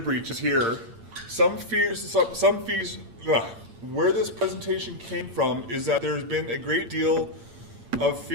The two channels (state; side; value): late; left; 8.8 ms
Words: breaches here, where this presentation came from is that there's been a great deal of